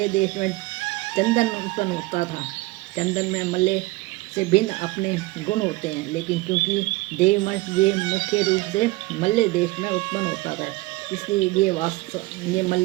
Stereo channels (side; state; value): left; quieter; 20.8 dB